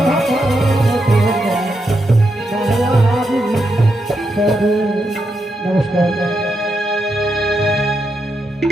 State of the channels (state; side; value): normal; both; correlation 0.83